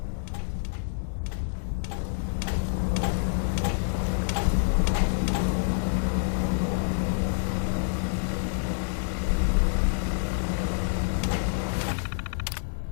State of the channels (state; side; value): silent; right; 60 dB below the other